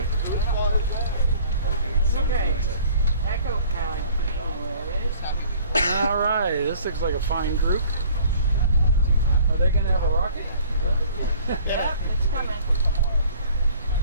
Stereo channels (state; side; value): inverted; both; correlation -0.51